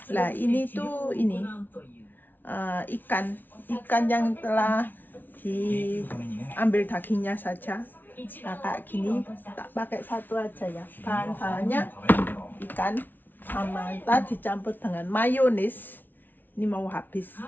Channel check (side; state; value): right; late; 0.089 ms